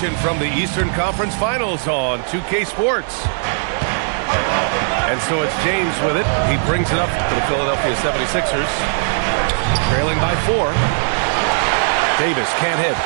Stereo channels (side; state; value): left; silent; digital silence